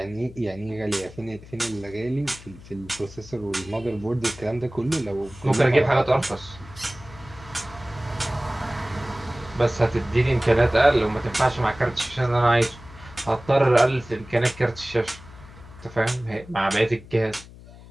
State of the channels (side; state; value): left; noise; hum, 19 dB below the sound